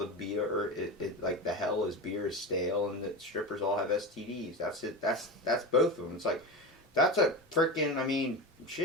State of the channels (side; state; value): both; normal; correlation 0.23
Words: beer, like, the hell is beer is stale, and the strippers all have STDs. That's it. That's both of them. It's like, that's a freaking, I mean,